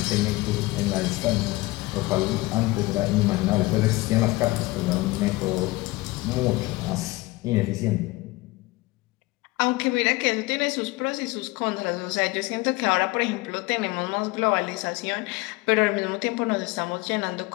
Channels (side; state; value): right; quieter; 21.3 dB